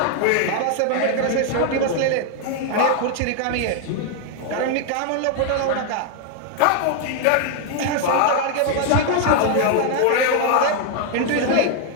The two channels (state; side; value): different; both; correlation 0.00